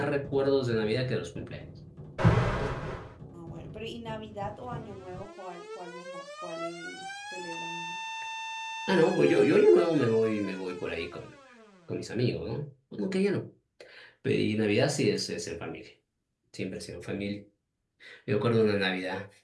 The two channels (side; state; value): both; identical; correlation 1.00